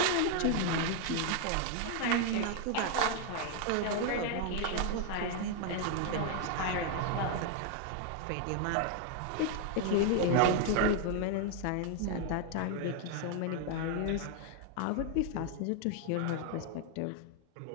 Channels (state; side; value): different; both; correlation 0.00